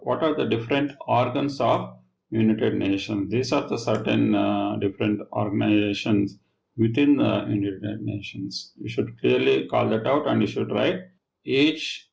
What are the different organs of United Nations? These are the certain different organizations within the United Nations. You should clearly call that out and you should write each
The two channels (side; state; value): both; identical; correlation 1.00